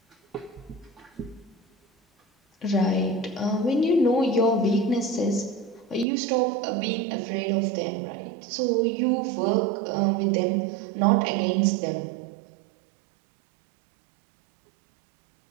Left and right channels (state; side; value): drops out; left; at 6.1 s